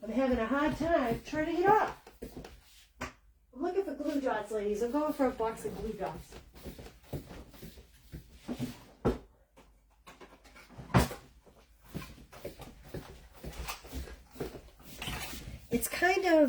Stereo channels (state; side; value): identical; both; correlation 1.00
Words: I'm having a hard time turning it off. I'm looking for glue dots, ladies. I'm going for a box of glue dots. It's kind